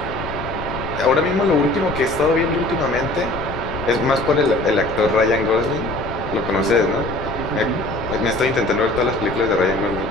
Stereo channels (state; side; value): noise; left; rumble, 10 dB below the sound